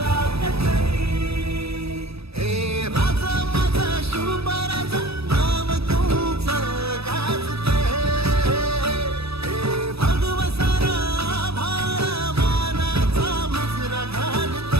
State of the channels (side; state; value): left; late; 0.78 ms